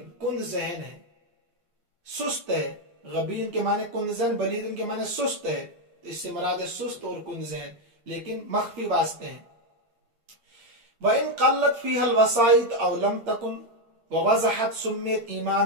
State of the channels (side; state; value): left; late; 8.6 ms